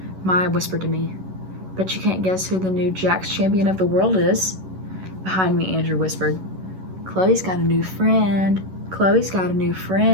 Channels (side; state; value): left; late; 11 ms